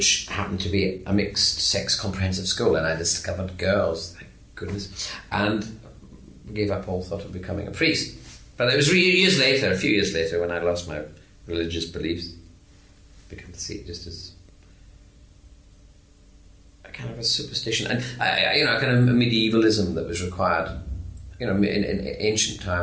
happened to be a mixed-sex comprehensive school, and I discovered girls, thank goodness, and gave up all thought of becoming a priest. But it was a few years later, when I lost my religious beliefs, began to see it just as a kind of a superstition, and a kind of medievalism that was required, in ancient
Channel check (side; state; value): both; identical; correlation 1.00